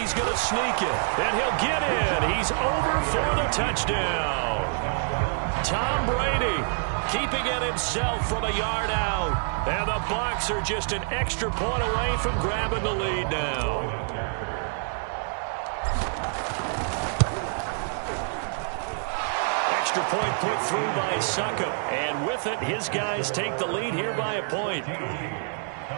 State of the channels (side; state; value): left; silent; 60 dB below the other